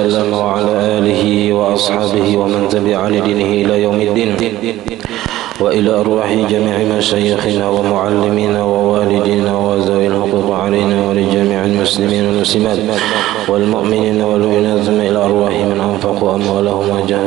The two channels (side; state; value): left; quieter; 15.2 dB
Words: وعلى آله وأصحابه ومن تبع لدينه إلى يوم الدين وإلى أرواح جميع مشايخنا ومعلمينا ووالدينا وذوي الحقوق علينا ولجميع المسلمين والمسلمات والمؤمنين والمؤمنات ثم إلى أرواح من أنفقوا أموالهم